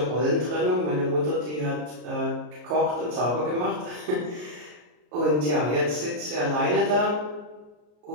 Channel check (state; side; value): late; left; 33 ms